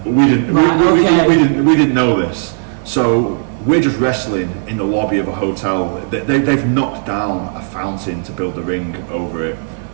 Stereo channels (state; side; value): silent; left; digital silence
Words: But we didn't. We didn't know this. So we're just wrestling in the lobby of a hotel. They've knocked down a fountain to build the ring over it.